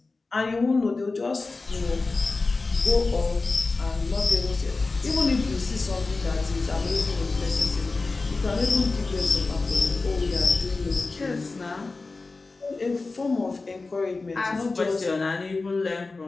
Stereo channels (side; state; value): right; quieter; 3.7 dB